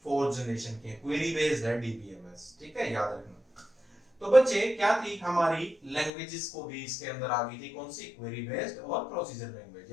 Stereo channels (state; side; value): drops out; right; at 6.1 s